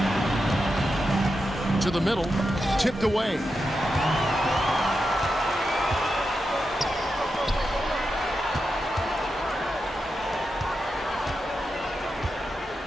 To the middle, tipped away.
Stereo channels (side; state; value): both; normal; correlation 0.88